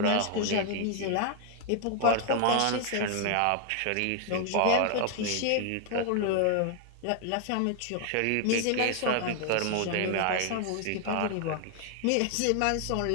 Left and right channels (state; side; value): different; both; correlation 0.00